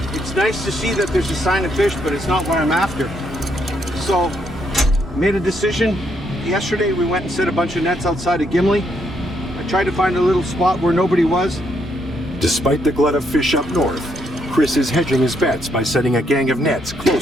It's nice to see that there's a sign of fish, but it's not what I'm after. So, made a decision. Yesterday, we went and set a bunch of nets outside of Gimli. I tried to find a little spot where nobody was. Despite the glut of fish up north, Chris is hedging his bets by setting a gang of nets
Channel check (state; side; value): normal; both; correlation 0.75